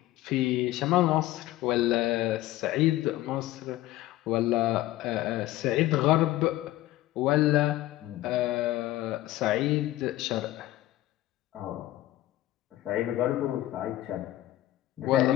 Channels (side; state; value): right; quieter; 15.8 dB